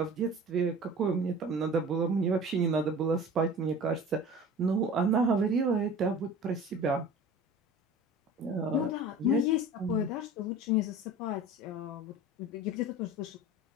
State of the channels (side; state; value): both; normal; correlation 0.39